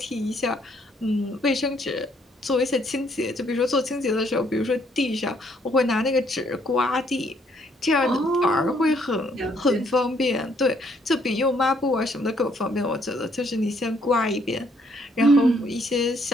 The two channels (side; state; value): both; normal; correlation 0.68